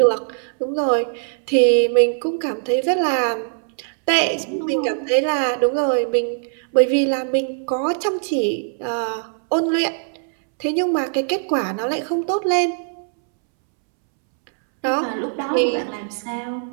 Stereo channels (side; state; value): left; silent; 65 dB below the other